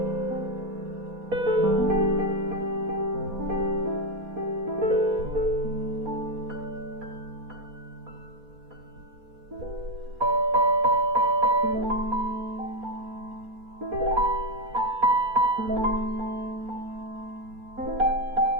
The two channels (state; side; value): late; left; 4.2 ms